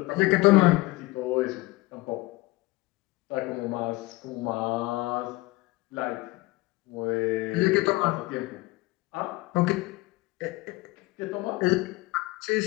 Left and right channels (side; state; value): right; quieter; 20.9 dB